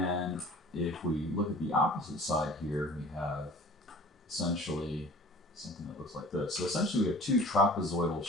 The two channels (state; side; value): normal; both; correlation 0.46